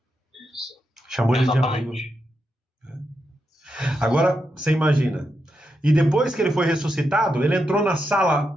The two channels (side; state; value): both; normal; correlation 0.85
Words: Chamou ele de amigo. Agora, você imagina. E depois que ele foi ressuscitado, ele entrou na